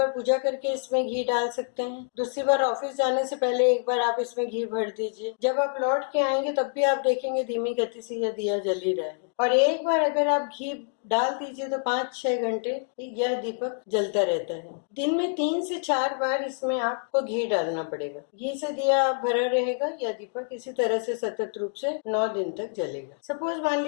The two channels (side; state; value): right; silent; 60 dB below the other